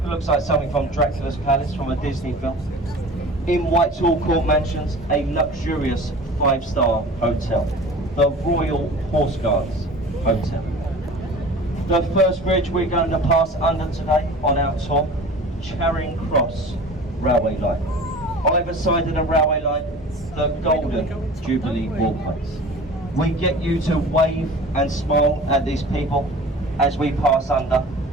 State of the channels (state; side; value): normal; both; correlation 0.40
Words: looks like something from Dracula's Palace from a Disney film. In Whitehall Court Mansions, a luxurious 5-star hotel, the Royal Horse Guards Hotel. The first bridge we're going to pass under today on our tour, Charing Cross Railway Line. Either side of the railway line, the Golden Jubilee Walkways. We get you to wave and smile at these people as we pass under.